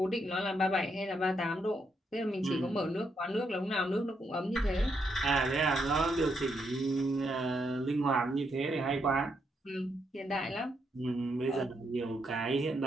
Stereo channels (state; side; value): normal; both; correlation 0.78